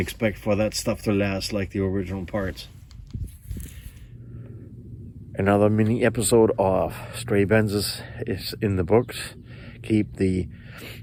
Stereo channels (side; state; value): both; identical; correlation 1.00